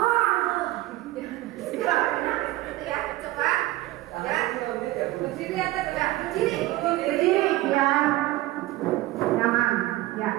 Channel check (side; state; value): left; quieter; 17.5 dB